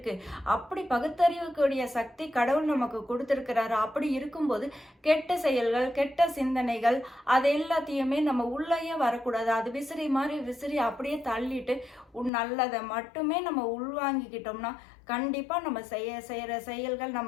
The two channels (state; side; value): drops out; right; at 12.3 s